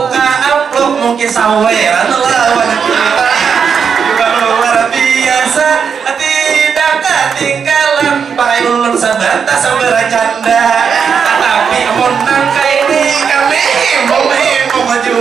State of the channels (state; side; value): quieter; left; 6.6 dB